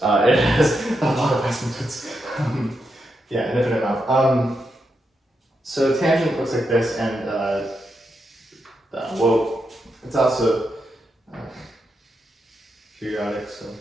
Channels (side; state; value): both; normal; correlation 0.84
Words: It has a lot of asymptotes. Yeah, an infinite amount. So tangent looks like this, and whoa, it's also periodic, so